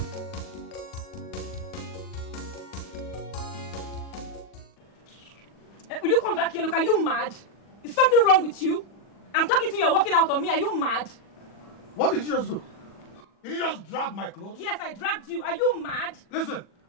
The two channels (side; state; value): right; late; 40 ms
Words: Will you come back here? Look, are you mad? Is something wrong with you? I'm talking to you, you're walking out on me. Are you mad? What did you just do? Did you just drag my clothes? Yes, I dragged you. Are you mad? Listen,